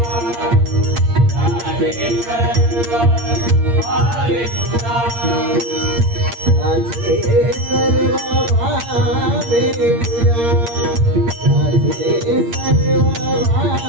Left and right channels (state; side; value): late; left; 8.6 ms